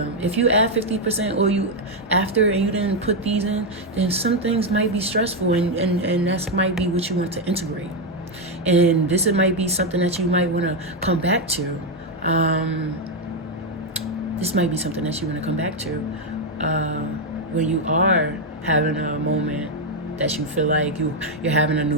If you add 50% or you after and you didn't put these in, then some things might be stressful, and that might be what you want to integrate. And this might be something that you might want to come back to. This might be something that you want to come back to when you are having a moment that you feel like you're having a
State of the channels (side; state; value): both; normal; correlation 0.03